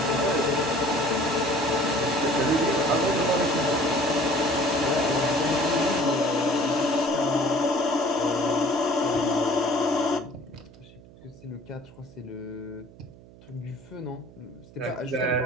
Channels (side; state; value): right; noise; hum, 22 dB below the sound